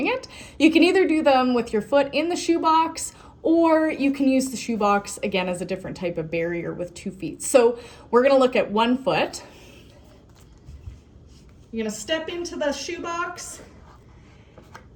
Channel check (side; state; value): both; identical; correlation 1.00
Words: it. You can either do them with your foot in the shoebox, or you can use the shoebox, again, as a different type of barrier with 2 feet. So we're gonna look at 1 foot. You're gonna step into the shoebox,